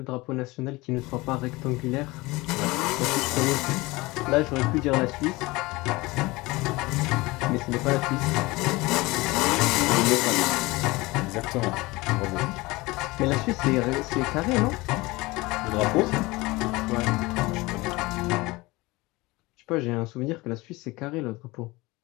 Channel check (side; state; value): right; quieter; 22.0 dB